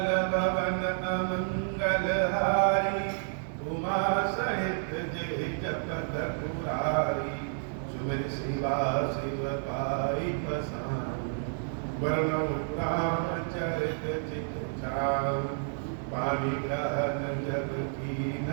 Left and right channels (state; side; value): silent; left; 58 dB below the other